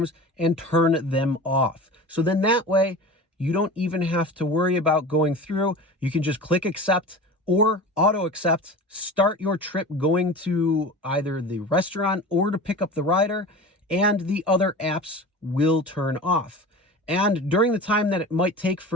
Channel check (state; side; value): normal; both; correlation 0.34